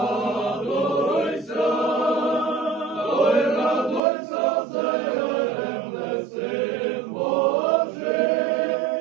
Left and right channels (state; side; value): drops out; left; at 4.0 s